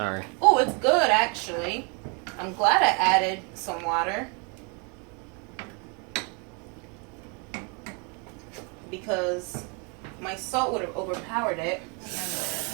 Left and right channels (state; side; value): quieter; left; 33.9 dB